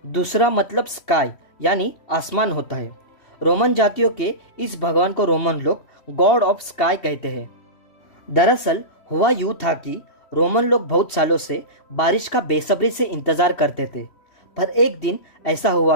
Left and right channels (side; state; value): right; late; 3.1 ms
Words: दूसरा मतलब स्काई यानी आसमान होता है। रोमन जातियों के इस भगवान को रोमन लोग गॉड ऑफ स्काई कहते हैं। दरअसल हुआ यूं था कि रोमन लोग बहुत सालों से बारिश का बेसब्री से इंतजार करते थे, पर एक दिन ऐसा हुआ